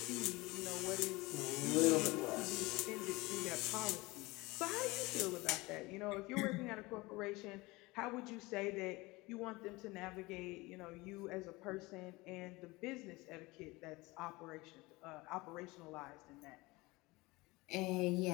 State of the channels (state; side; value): quieter; right; 22.4 dB